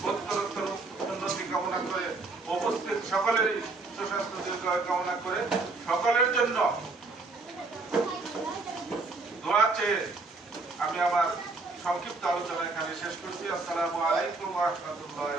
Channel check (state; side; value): quieter; left; 3.5 dB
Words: উত্তরোত্তর উন্নতি কামনা করে, উপস্থিত সকলেরই সুস্বাস্থ্য দীর্ঘায়ু কামনা করে সকলের জন্য দোয়া চেয়ে আমি আমার সংক্ষিপ্ত আলোচনা এখানে শেষ করছি। আসসালামু আলাইকুম ওয়া রাহমাতুল্লাহি